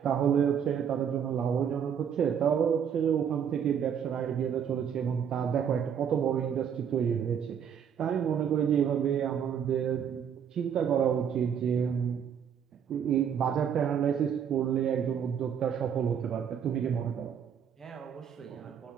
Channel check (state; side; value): quieter; left; 8.1 dB